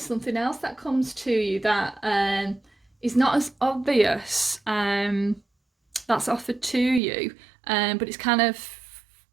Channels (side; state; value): left; drops out; at 7.0 s